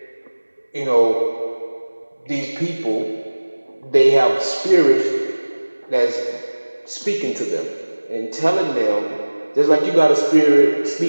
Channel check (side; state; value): both; inverted; correlation -1.00